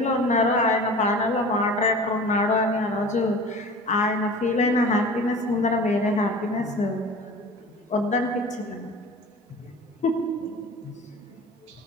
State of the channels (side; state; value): both; normal; correlation 0.39